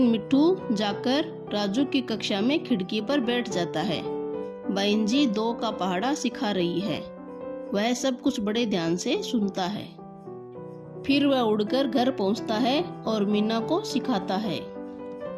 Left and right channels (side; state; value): both; identical; correlation 1.00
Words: मिट्ठू जाकर राजू की कक्षा में खिड़की पर बैठ जाता है। बहन जी 2 का पहाड़ा सिखा रही है। वह सब कुछ बड़े ध्यान से सुनता है। फिर वह उड़कर घर पहुंचता है और मीना को सिखाता है।